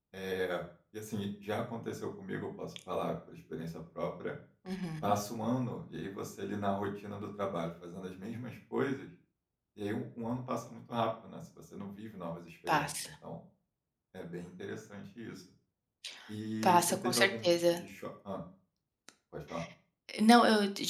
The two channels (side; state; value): both; identical; correlation 1.00